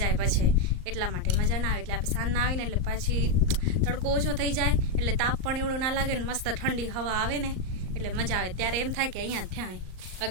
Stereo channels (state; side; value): late; left; 38 ms